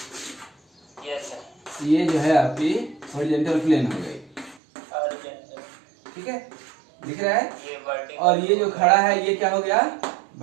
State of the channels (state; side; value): drops out; left; at 4.6 s